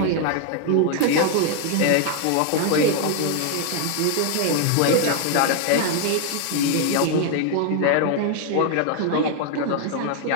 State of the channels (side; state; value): both; different; correlation 0.00